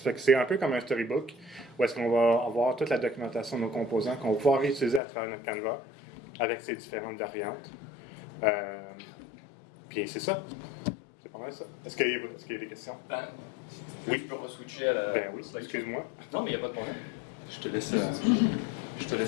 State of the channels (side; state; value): right; drops out; at 5.0 s